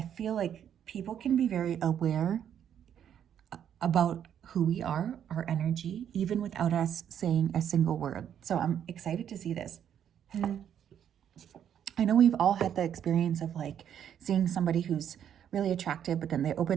feel like people can be very aware about who we are, our energy, even without us saying a single word. So I'm excited to see this. I know we've all had the experience of like seeing somebody who's really attractive, but then they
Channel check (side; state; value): left; quieter; 9.3 dB